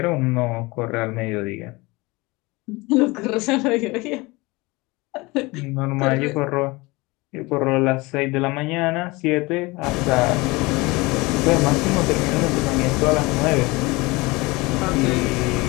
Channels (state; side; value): quieter; right; 23.6 dB